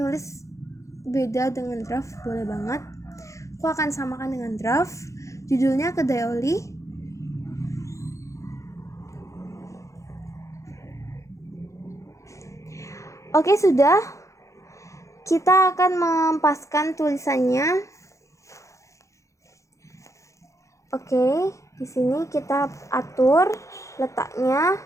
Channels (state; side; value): late; right; 0.15 ms